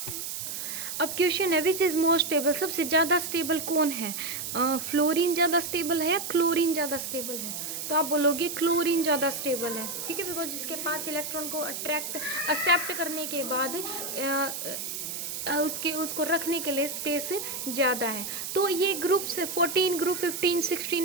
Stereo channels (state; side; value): noise; right; hiss, 5 dB below the sound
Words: अब क्वेश्चन है विच इज़ मोर स्टेबल, सबसे ज़्यादा स्टेबल कौन है? फ्लोरीन ज़्यादा स्टेबल है या क्लोरीन ज़्यादा स्टेबल है? तो आप बोलोगे क्लोरीन ज़्यादा स्टेबल है, ठीक है, बिकॉज इसके पास इलेक्ट्रॉन को एक्सेप्ट करने के बाद उसको रखने के लिए स्पेस ज़्यादा है। तो ये ग्रुप से 14, ग्रुप 15,